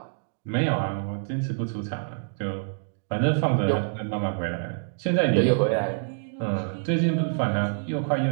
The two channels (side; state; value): left; silent; digital silence